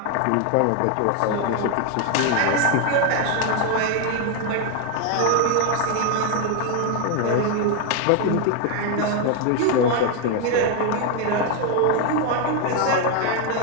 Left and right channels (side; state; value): both; different; correlation 0.01